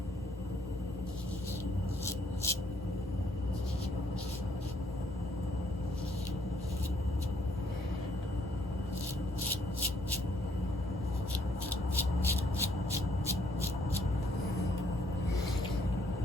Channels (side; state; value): both; normal; correlation 0.67